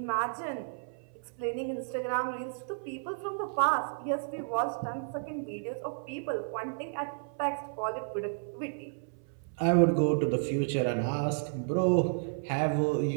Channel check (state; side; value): silent; left; 56 dB below the other